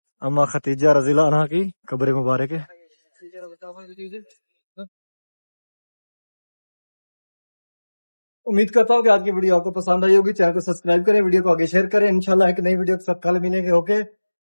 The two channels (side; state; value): both; inverted; correlation -1.00